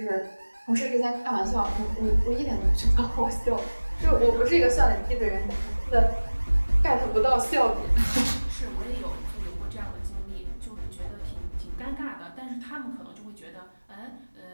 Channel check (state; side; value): inverted; both; correlation -1.00